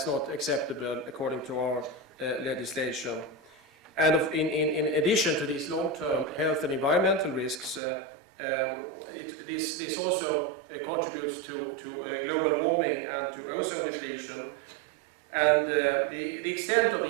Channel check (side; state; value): left; drops out; at 7.8 s